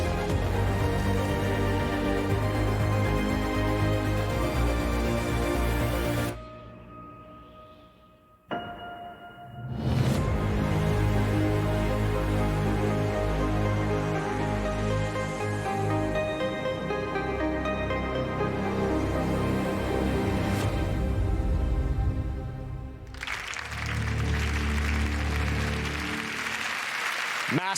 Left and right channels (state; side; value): identical; both; correlation 1.00